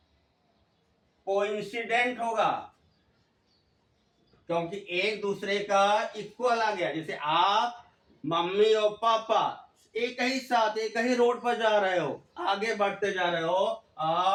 कोइंसिडेंट होगा, क्योंकि एक दूसरे का इक्वल आ गया। जैसे आप मम्मी और पापा एक ही साथ एक ही रोड पर जा रहे हो, आगे बढ़ते जा रहे हो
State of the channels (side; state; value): both; identical; correlation 1.00